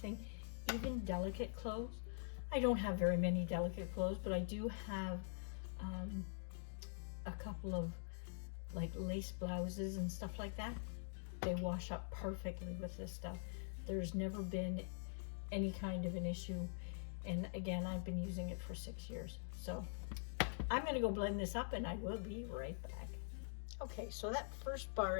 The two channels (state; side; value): silent; right; digital silence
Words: even delicate clothes. I don't have very many delicate clothes, but I do have a couple of like lace blouses and stuff like that. They wash up perfectly with this stuff. There's never been any kind of an issue. And again, I've been using it for 6 years. So I'm gonna go blend this up and I will be right back. Okay, so that first bar